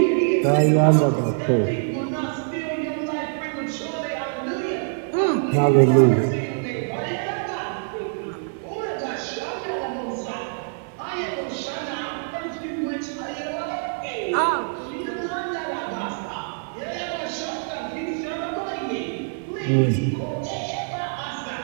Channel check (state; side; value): silent; left; 62 dB below the other